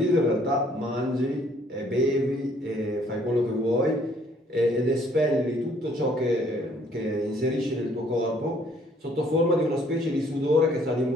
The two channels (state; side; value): normal; both; correlation 0.62